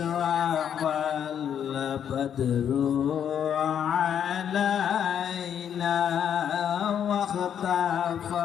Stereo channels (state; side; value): quieter; right; 8.9 dB